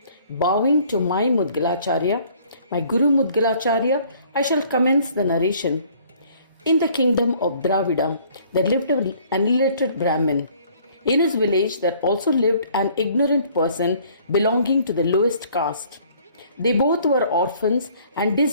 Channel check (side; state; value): both; inverted; correlation -0.58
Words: Bowing to my Mudgalacharya, my Guru Mudgalacharya, I shall commence the narration. In the kingdom of Dravida, there lived an illiterate Brahmin. In his village, there also lived an ignorant person belonging to the lowest caste. They both were orphans and